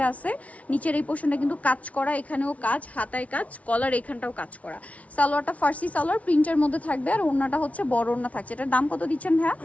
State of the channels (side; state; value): right; late; 0.066 ms